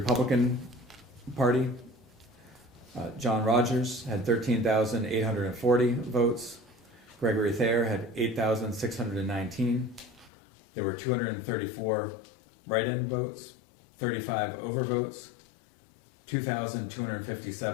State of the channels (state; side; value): drops out; right; at 10.3 s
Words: Party, John Rogers had 13,840 votes. Gregory Thayer had 8,619. There were 234 write-in votes, 35 overvotes,